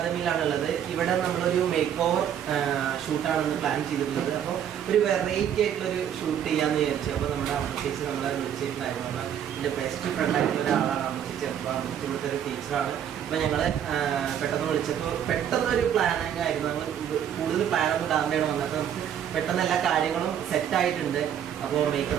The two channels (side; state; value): left; quieter; 9.4 dB